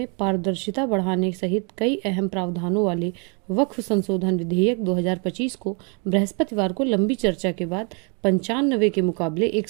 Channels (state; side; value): quieter; left; 35.9 dB